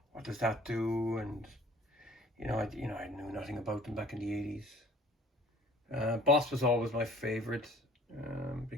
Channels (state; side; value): normal; both; correlation 0.52